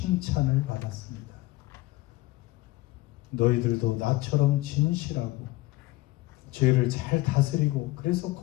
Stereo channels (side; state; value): right; quieter; 19.4 dB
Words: 받았습니다. 너희들도 나처럼 진실하고 죄를 잘 다스리고 그래서